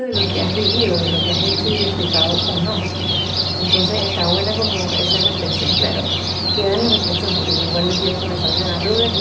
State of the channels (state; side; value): identical; both; correlation 1.00